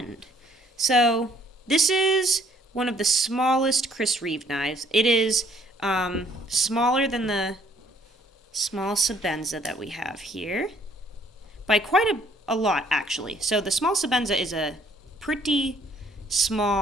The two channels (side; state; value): both; normal; correlation 0.63